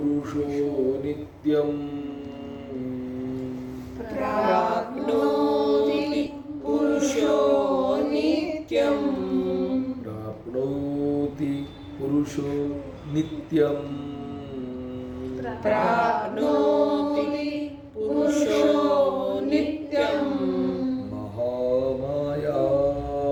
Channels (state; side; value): identical; both; correlation 1.00